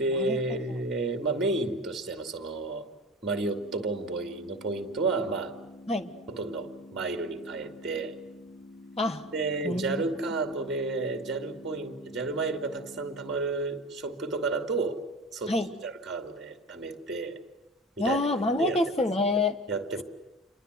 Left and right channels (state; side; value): normal; both; correlation 0.32